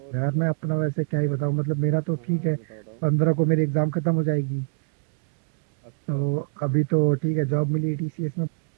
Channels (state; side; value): silent; left; digital silence